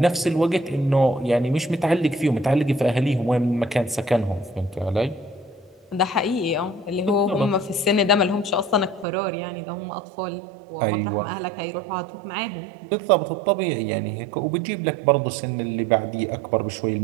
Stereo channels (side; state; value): left; drops out; at 9.1 s